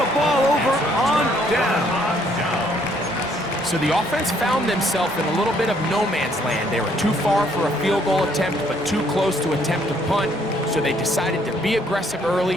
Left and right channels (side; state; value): both; normal; correlation 0.66